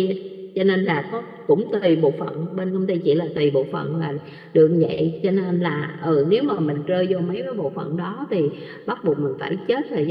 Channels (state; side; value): identical; both; correlation 1.00